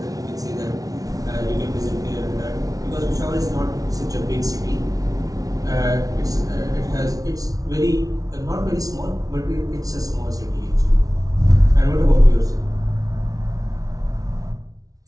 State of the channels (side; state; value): left; late; 0.18 ms